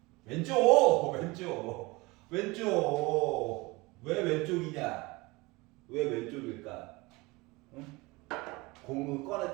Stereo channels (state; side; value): quieter; left; 23.6 dB